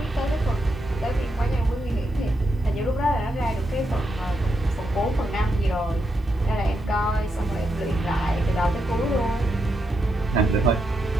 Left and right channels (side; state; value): both; normal; correlation 0.83